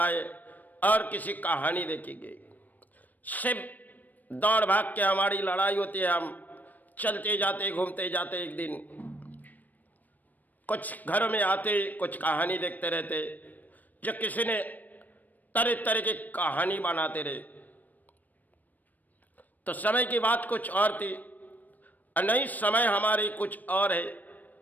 और किसी कहानी देखी गई। सिर्फ दौड़ भाग के हमारी लड़ाई होती है। हम चलते जाते घूमते जाते एक दिन कुछ घरों में आते कुछ कहानी देखते रहते जो किसी ने तरह तरह की कहानी बनाते रहे। तो समय की बात कुछ और थी और नई समय हमारी कुछ और है,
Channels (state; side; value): late; right; 0.083 ms